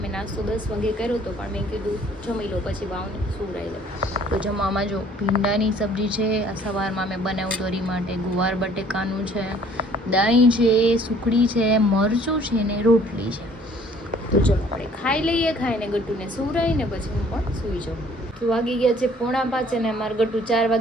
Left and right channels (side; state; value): both; normal; correlation 0.56